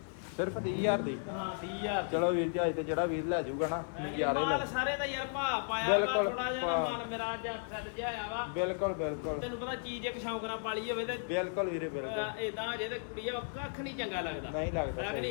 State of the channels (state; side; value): silent; right; digital silence